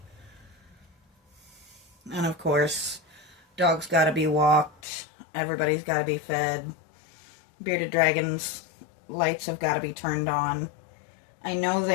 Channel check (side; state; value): right; drops out; at 4.8 s